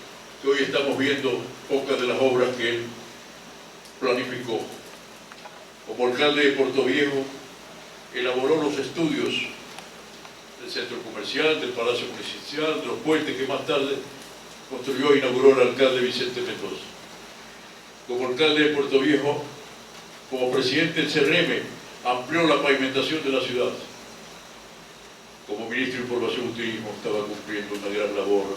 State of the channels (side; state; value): both; identical; correlation 1.00